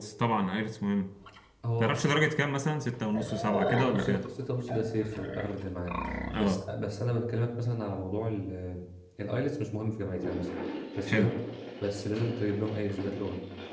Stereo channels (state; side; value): identical; both; correlation 1.00